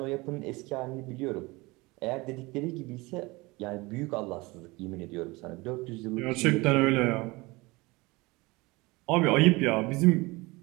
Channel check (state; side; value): quieter; left; 23.3 dB